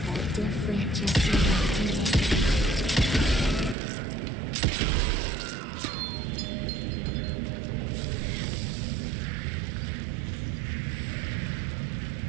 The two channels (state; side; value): drops out; left; at 3.8 s